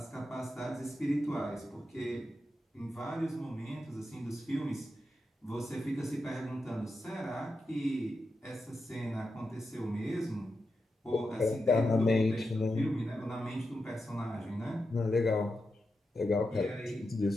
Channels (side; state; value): both; normal; correlation 0.88